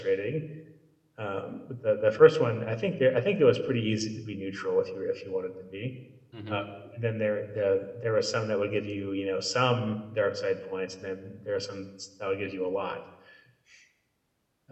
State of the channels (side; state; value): both; identical; correlation 1.00